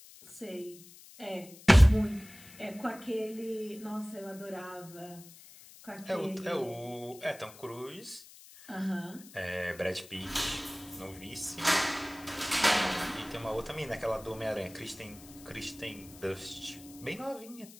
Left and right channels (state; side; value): noise; left; hiss, 20 dB below the sound